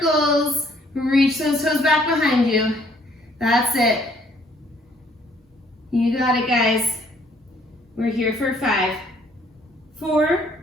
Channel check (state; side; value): normal; both; correlation 0.63